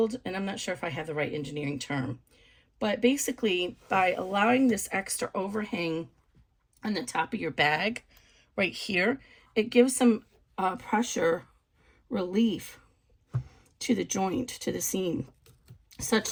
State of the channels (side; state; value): both; identical; correlation 1.00